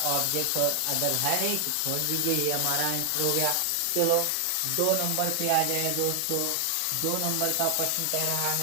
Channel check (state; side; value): different; both; correlation 0.00